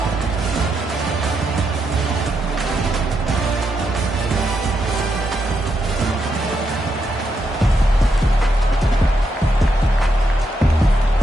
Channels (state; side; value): normal; both; correlation 0.81